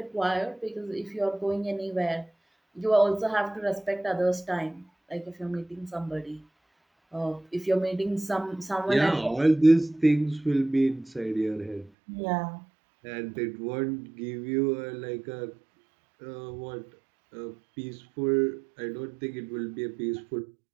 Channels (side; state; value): left; drops out; at 11.9 s